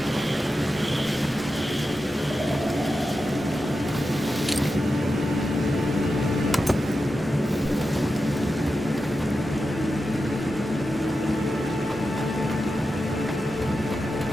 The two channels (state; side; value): normal; both; correlation 0.90